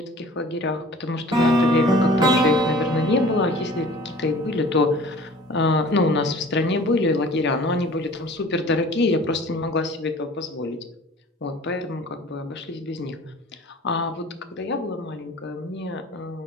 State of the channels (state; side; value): normal; both; correlation 0.46